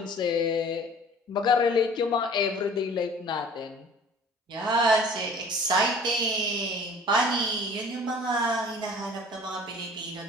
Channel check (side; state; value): both; normal; correlation 0.48